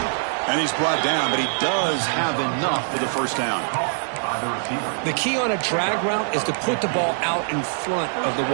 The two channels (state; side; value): silent; left; digital silence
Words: And he's brought down, but he does have enough for the first down. the receiver. The key on a drag route is to put the ball out in front of the